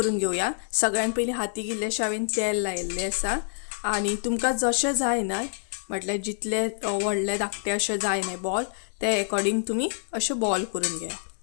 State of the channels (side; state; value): right; silent; 60 dB below the other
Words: घेवया. सगळ्यान पयलीं हातीक इल्लेशें हांवें तेल लायिल्लें आसा. आणि तुमकां जशें जाय न्हय, म्हटल्यार जितले व्हडले धाकटे अशें जाय न्हय बॉल, ते अकॉर्डिंग तुमी अशे बॉल करून घे.